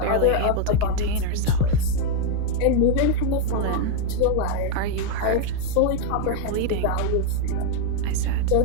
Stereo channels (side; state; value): both; different; correlation 0.00